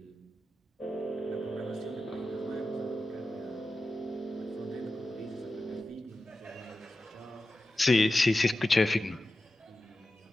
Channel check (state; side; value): normal; both; correlation 0.93